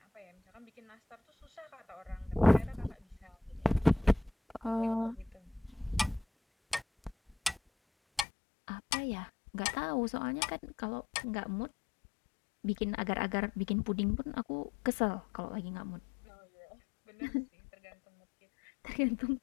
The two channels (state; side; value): drops out; right; at 8.2 s